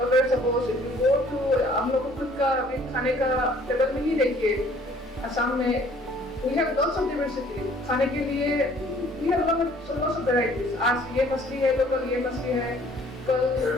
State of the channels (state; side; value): normal; both; correlation 0.57